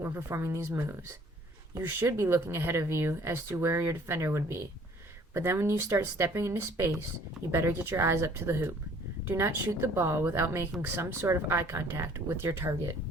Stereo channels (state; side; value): normal; both; correlation 0.55